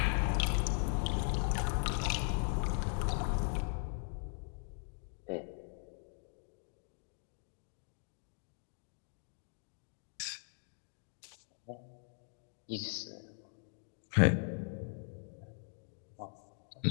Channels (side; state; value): right; silent; 52 dB below the other